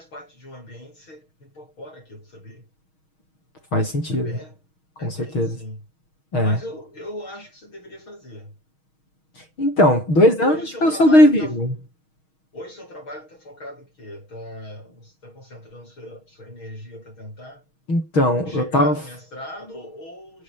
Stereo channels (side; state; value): right; late; 6.4 ms